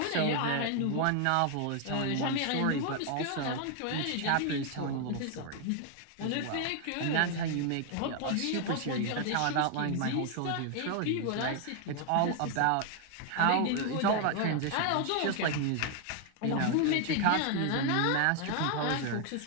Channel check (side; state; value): both; different; correlation 0.00